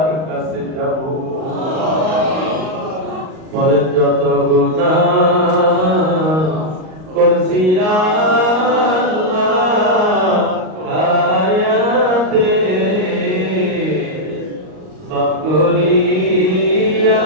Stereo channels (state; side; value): late; left; 38 ms